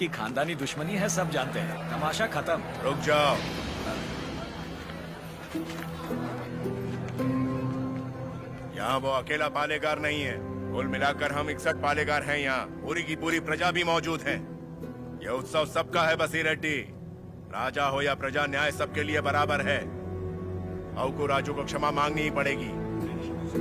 खानदानी दुश्मनी है, सब जानते हैं। तमाशा खत्म। रुक जाओ। यहाँ वो अकेला पालेगार नहीं है, कुल मिलाकर हम 61 पालेगार हैं। यहाँ पूरी की पूरी प्रजा भी मौजूद है। यह उत्सव सबका है बसीर रेड्डी। राजा हो या प्रजा, न्याय सबके लिए बराबर है। अबकू राजू को क्षमा मांगनी ही पड़ेगी।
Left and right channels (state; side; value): identical; both; correlation 1.00